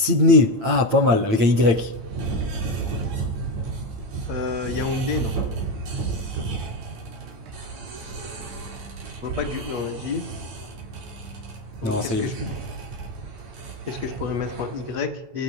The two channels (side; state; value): left; late; 8.8 ms